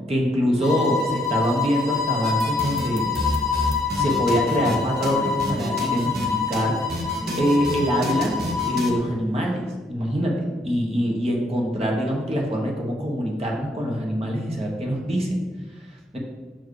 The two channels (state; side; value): normal; both; correlation 0.70